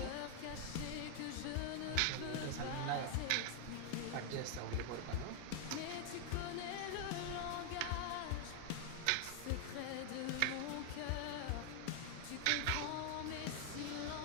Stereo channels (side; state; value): both; different; correlation 0.00